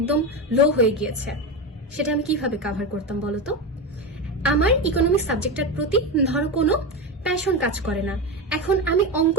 লো হয়ে গিয়েছে, সেটা আমি কিভাবে কাভার করতাম বলতো? আমার ইকোনমিক্স সাবজেক্টের প্রতি ধরো কোনো প্যাশন কাজ করে না, এখন আমি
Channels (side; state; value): both; normal; correlation 0.17